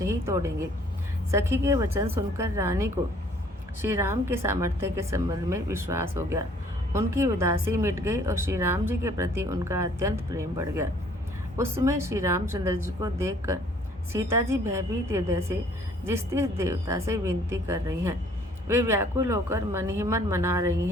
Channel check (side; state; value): both; normal; correlation 0.58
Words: ही तोड़ेंगे। सखी के वचन सुनकर रानी को श्री राम के सामर्थ्य के संबंध में विश्वास हो गया। उनकी उदासी मिट गई और श्री राम जी के प्रति उनका अत्यंत प्रेम बढ़ गया। उस समय श्री रामचंद्र जी को देखकर सीता जी भयभीत हृदय से जिस देवता से विनती कर रही हैं, वे व्याकुल होकर मन ही मन मना रही